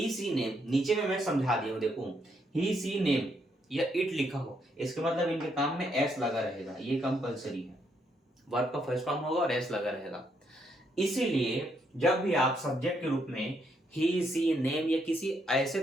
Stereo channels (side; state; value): both; normal; correlation 0.75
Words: सी नेम नीचे में मैं समझा दिया हूं, देखो ही सी नेम या इट लिखा हो, इसके मतलब इनके काम में एस लगा रहेगा, ये कंपलसरी है, वर्ब का फर्स्ट फॉर्म होगा और एस लगा रहेगा। इसीलिए जब भी आप सब्जेक्ट के रूप में ही सी नेम या किसी